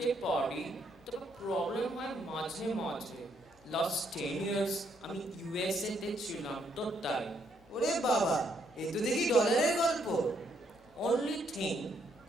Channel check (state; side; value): normal; both; correlation 0.73